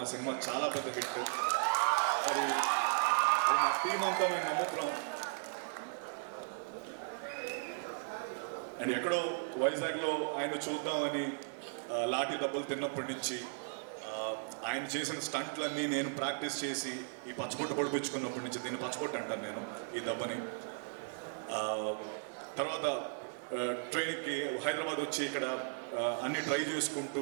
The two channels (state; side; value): silent; left; digital silence